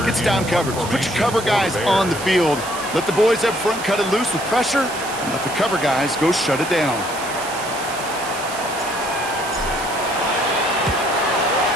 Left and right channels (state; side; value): noise; right; hiss, 11 dB below the sound